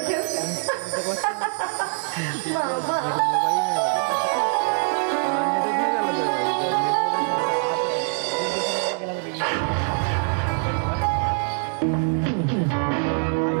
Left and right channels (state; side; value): silent; left; 55 dB below the other